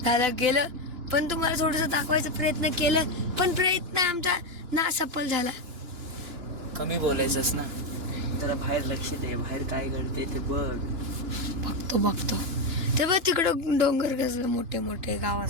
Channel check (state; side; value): late; left; 2.9 ms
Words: झालं गेलं, पण तुम्हाला थोडस दाखवायचा प्रयत्न केलं, पण प्रयत्न आमचा ना सफल झाला. कमी बोलायचंस ना, जरा बाहेर लक्ष दे, बाहेर काय घडते ते बघ. बघतो ते बघ तिकडं डोंगर कसले मोठे मोठे